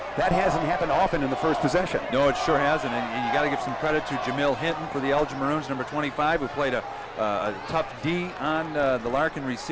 that hasn't happened often in the first possession. No, it sure hasn't, and you got to give some credit to Jamil Hinton for the Elgin Maroons, number 25, who played a tough D on the Larkin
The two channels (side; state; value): both; identical; correlation 1.00